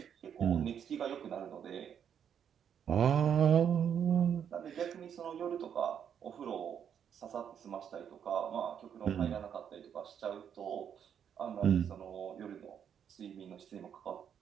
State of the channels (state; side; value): quieter; left; 8.4 dB